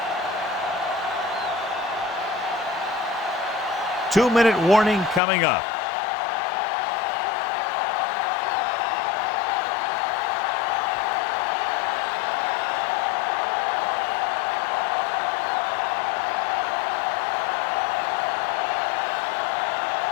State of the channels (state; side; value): drops out; right; at 5.2 s